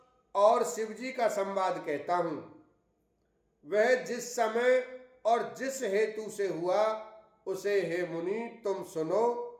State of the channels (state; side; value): identical; both; correlation 1.00